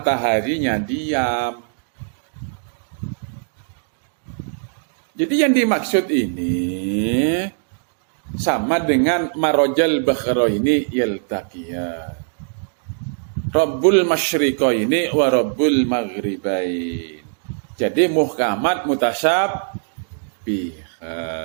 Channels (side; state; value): left; silent; digital silence